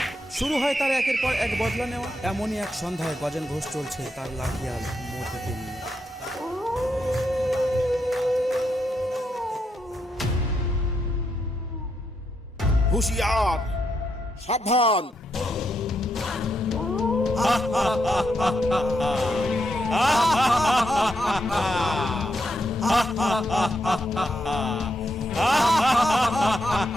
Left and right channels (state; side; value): normal; both; correlation 0.81